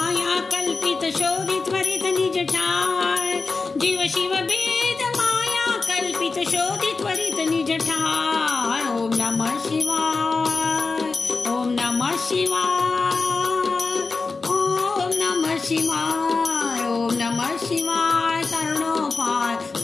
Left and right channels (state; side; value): quieter; right; 4.1 dB